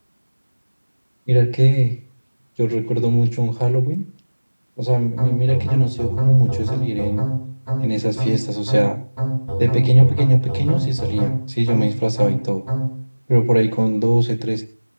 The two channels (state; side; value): inverted; both; correlation -1.00